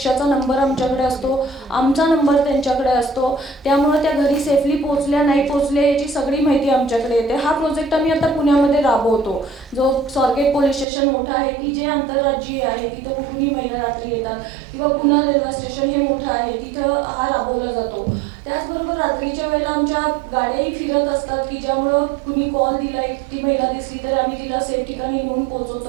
नंबर आमच्याकडे असतो, आमचा नंबर त्यांच्याकडे असतो. त्यामुळे त्या घरी सेफली पोचल्या नाही पोचल्या याची सगळी माहिती आमच्याकडे येते. हा प्रोजेक्ट आम्ही आता पुण्यामध्ये राबवतो, जो स्वारगेट पोलीस स्टेशन मोठं आहे की जे आंतरराज्यीय आहे, तिथं कुठूनही महिला रात्री येतात, किंवा पुणे रेल्वे स्टेशन हे मोठं आहे, तिथं हा राबवला जातो. त्याचबरोबर रात्रीच्या वेळेला आमच्या गाड्याही फिरत असतात की ज्यामुळं कुणी कॉल दिला, एकटी महिला दिसली तर आम्ही तिला सेफ ठिकाणी नेऊन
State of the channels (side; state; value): left; drops out; at 10.9 s